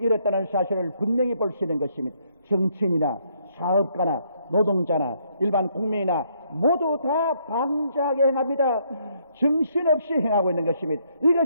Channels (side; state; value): both; inverted; correlation -0.71